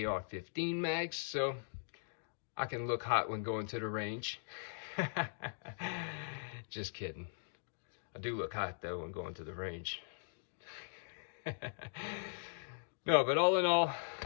mags, so I can look hot when going to the range. Just kidding. I do look hot though when going to the range. No, but all in all,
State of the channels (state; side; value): silent; right; digital silence